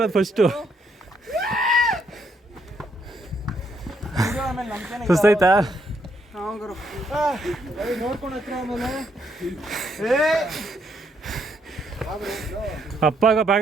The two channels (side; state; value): both; normal; correlation 0.74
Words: ಫಸ್ಟು. ಸುಸ್ತಾಯ್ತಾ? ನೋಡ್ಕೊಂಡು ಹತ್ರ ಆಮೇಲೆ ಅಪ್ಪಾಗ